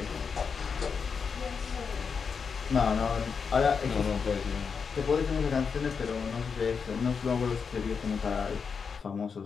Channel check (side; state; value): right; quieter; 5.8 dB